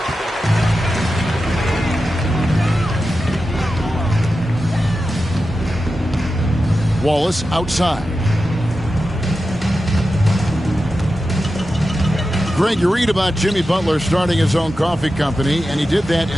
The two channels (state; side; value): normal; both; correlation 0.91